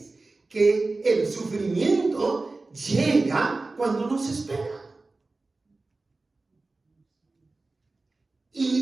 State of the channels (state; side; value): quieter; left; 3.4 dB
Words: que el sufrimiento llega cuando no se espera.